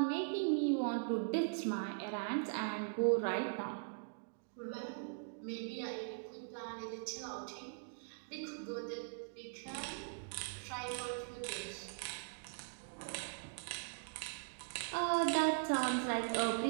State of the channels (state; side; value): silent; left; digital silence